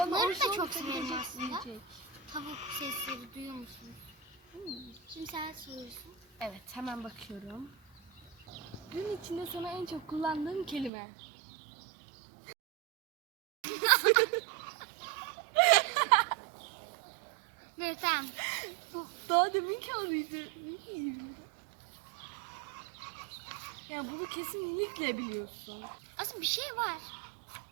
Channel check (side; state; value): left; drops out; at 10.9 s